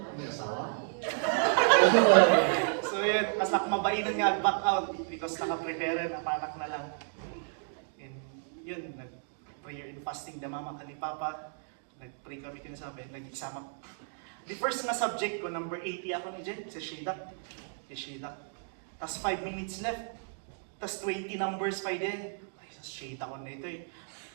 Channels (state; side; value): silent; left; digital silence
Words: So yun, mas nakmabainan nga ang back-out because nakaprepare na panak na lang. And yun, nag-prayer and fasting na mama ka ni Papa. Nag-pray kami kinasabi, nag-exam. The first na subject ko, number 80 ako ni Jen, sa Shedak. Tapos 5 minutes left. Tapos 20 numbers pa din. Shade ako na ito eh.